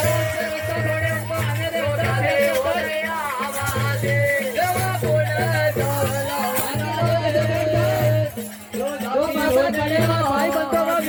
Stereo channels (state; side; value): identical; both; correlation 1.00